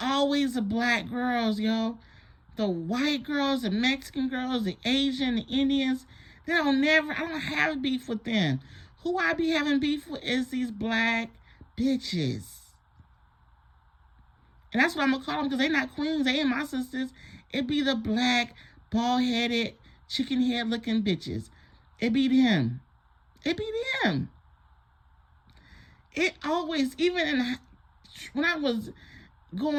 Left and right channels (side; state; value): both; identical; correlation 1.00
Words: always the black girls, yo. The white girls, the Mexican girls, the Asian, the Indians. I don't have beef with them. Who I be having beef with is these black bitches. And that's what I'm going to call them because they not queens. They ain't my sisters. It be the black, bald-headed, chicken head-looking bitches. It be them. It be them. It always, even when I was